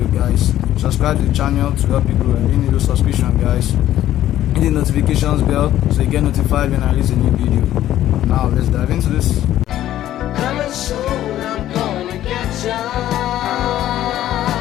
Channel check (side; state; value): right; quieter; 12.8 dB